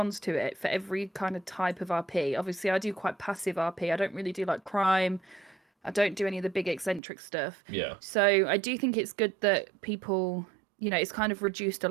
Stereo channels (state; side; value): drops out; left; at 7.0 s